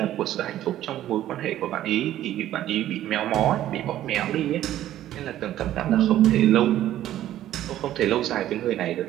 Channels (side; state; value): left; quieter; 12.9 dB